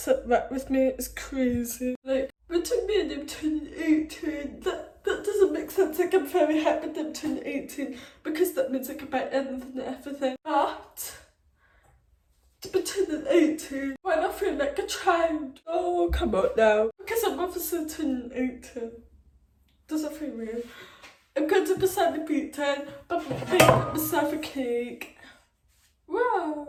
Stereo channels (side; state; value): both; identical; correlation 1.00